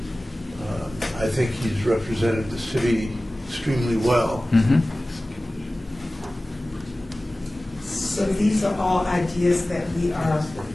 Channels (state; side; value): normal; both; correlation 0.97